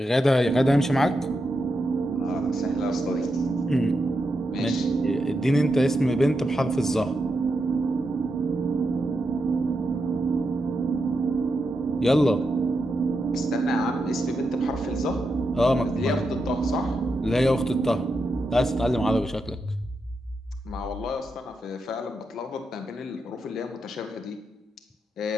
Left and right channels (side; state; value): both; normal; correlation 0.86